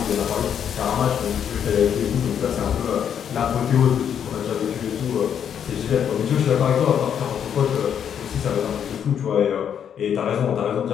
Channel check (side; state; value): right; quieter; 8.5 dB